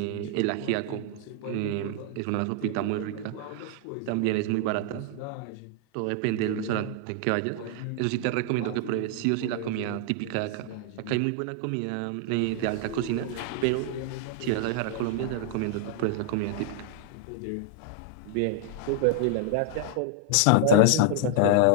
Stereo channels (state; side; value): different; both; correlation 0.00